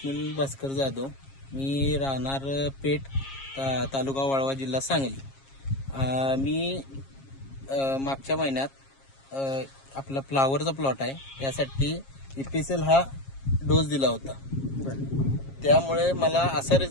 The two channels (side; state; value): right; late; 7.4 ms